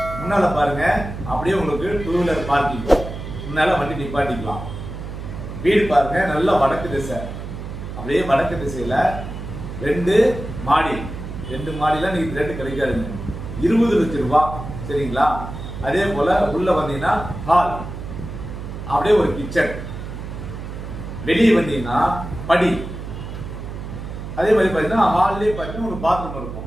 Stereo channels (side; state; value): right; noise; hum, 9 dB below the sound